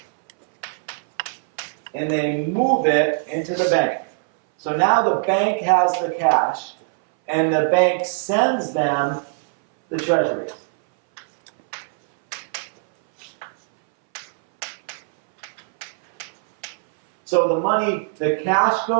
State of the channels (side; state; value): left; silent; 62 dB below the other